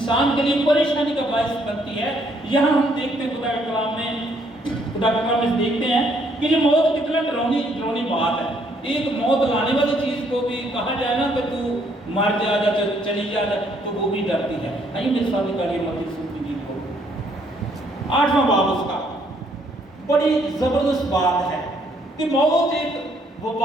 کے لیے پریشانی کا باعث بنتی ہے. یہاں ہم دیکھتے ہیں خدا کے کلام میں دیکھتے ہیں کہ یہ موت کتنا ڈراؤنی بات ہے. ایک موت لانے والی چیز کو بھی کہا جائے نا کہ تو مر جا چلی جا تو وہ بھی ڈرتی ہے. آئیے میرے ساتھ کریے متی سنتی جی کو 8واں باب اس کا بڑی زبردست بات ہے کہ موت ایک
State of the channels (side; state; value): both; normal; correlation 0.68